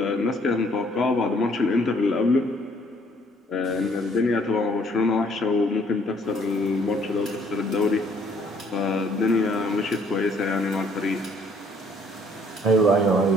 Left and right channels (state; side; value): normal; both; correlation 0.63